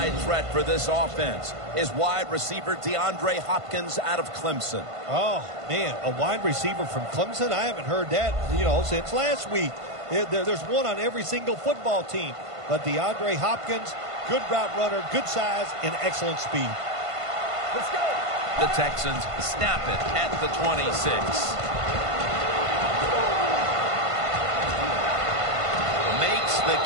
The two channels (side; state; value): left; late; 1.5 ms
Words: threat for this offense is wide receiver DeAndre Hopkins out of Clemson. Oh, man, a wide receiver from Clemson? I haven't heard that, since last week. There's one on every single football team. But DeAndre Hopkins, good route runner, good size, and excellent speed. Let's go. The Texans snap it at the 26. Makes the